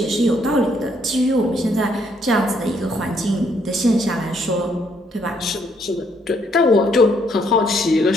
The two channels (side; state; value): both; normal; correlation 0.70